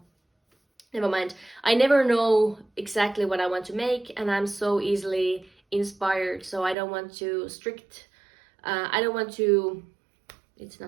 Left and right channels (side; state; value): left; drops out; at 6.8 s